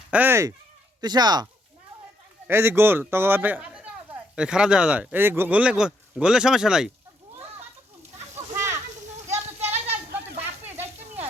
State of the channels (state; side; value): normal; both; correlation 0.74